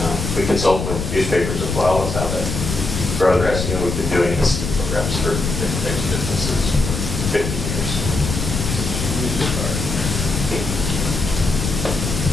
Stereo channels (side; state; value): left; noise; rumble, 3 dB below the sound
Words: We consult with newspapers as well as how to grow their SEO. We've been doing this programs for different types of businesses for 50 years.